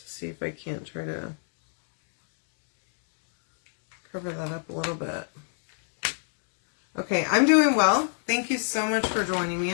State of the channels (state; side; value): silent; right; digital silence